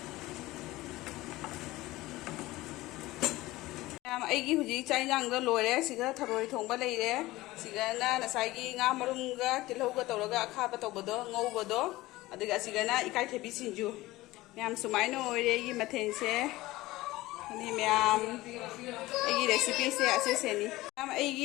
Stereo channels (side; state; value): right; quieter; 18.5 dB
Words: ꯃꯌꯥꯝ ꯑꯩꯒꯤ ꯍꯧꯖꯤꯛ ꯆꯥꯛ ꯏꯟꯖꯥꯡꯗꯣ ꯂꯣꯏꯔꯦ ꯁꯤꯒ ꯊꯔꯣꯏ ꯊꯣꯡꯕ ꯂꯩꯔꯦ ꯁꯤꯒꯅ ꯉꯁꯥꯏꯒꯤ ꯉꯥ ꯃꯔꯨꯝꯒ ꯇꯤꯜꯍꯧꯒ ꯇꯧꯔꯒ ꯑꯈꯥꯕ ꯇꯧꯕꯗꯣ ꯉꯧꯕꯗꯣ ꯑꯗꯨꯒ ꯑꯁꯤꯒꯅ ꯏꯀꯥꯏꯊꯕꯤ ꯁꯤꯡꯖꯨ ꯃꯌꯥꯝ ꯁꯨꯃꯥꯏꯅ ꯑꯣꯏꯔꯦ ꯑꯩꯒꯤ ꯃꯊꯦꯜꯁꯦ ꯑꯅꯤ ꯃꯌꯥꯝ ꯑꯩꯒꯤ ꯔꯦꯁꯤꯄꯤꯁꯦ ꯑꯁꯤꯁꯦꯅꯤ ꯃꯌꯥꯝ ꯑꯩꯒꯤ